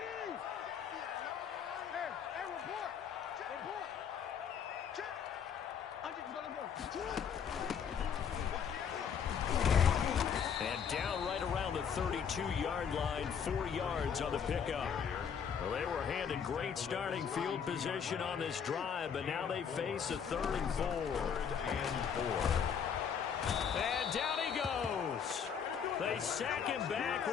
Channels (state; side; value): quieter; right; 7.3 dB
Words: And down right around the 32-yard line, 4 yards on the pickup. Well, they were handed great starting field position on this drive, but now they face a 3rd and 4. And down he goes. They sack him back